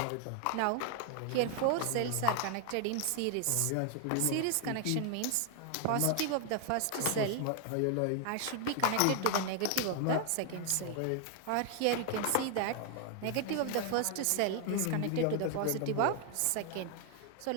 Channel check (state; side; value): different; both; correlation 0.00